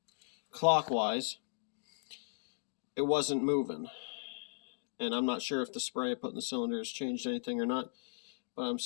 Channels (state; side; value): silent; right; digital silence